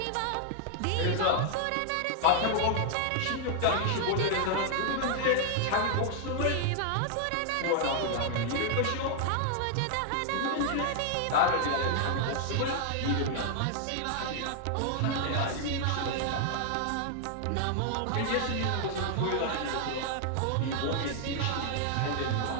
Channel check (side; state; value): both; different; correlation 0.00